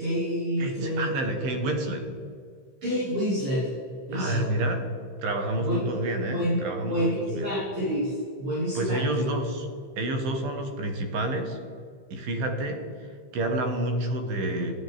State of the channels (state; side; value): late; left; 15 ms